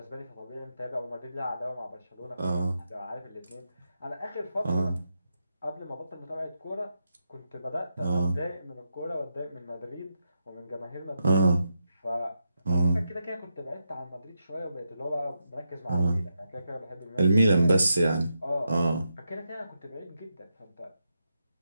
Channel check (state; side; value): inverted; both; correlation -0.85